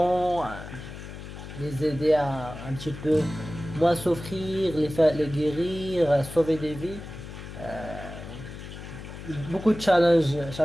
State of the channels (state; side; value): noise; left; hum, 12 dB below the sound